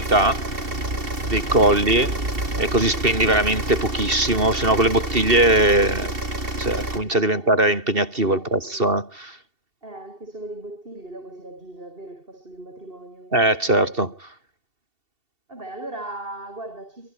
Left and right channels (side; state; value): left; late; 2.7 ms